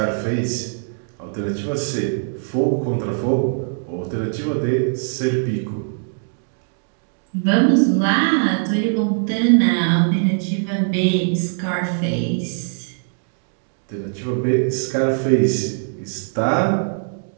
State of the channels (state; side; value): silent; left; digital silence